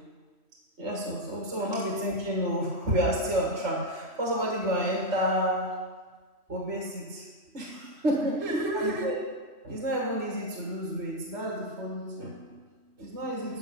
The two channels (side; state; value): left; late; 3.1 ms